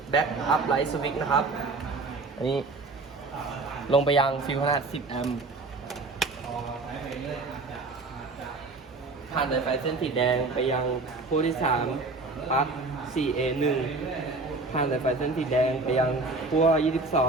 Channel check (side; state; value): left; quieter; 3.5 dB